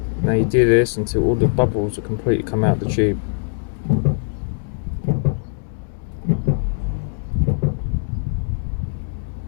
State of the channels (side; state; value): right; silent; digital silence